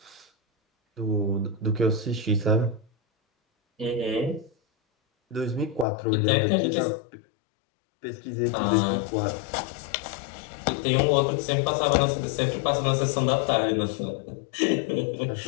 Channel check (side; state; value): right; drops out; at 5.9 s